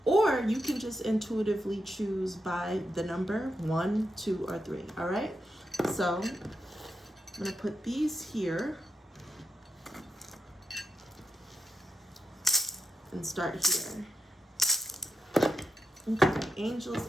Or you can just intuitively choose by the number 1, 2, or 3. All right? So I'm going to put these here and start here. Okay,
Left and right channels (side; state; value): both; normal; correlation 0.85